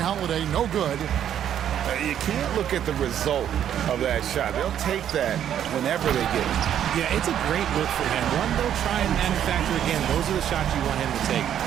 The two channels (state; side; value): quieter; left; 10.0 dB